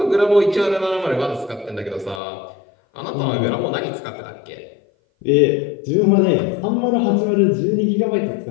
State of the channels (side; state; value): right; drops out; at 2.2 s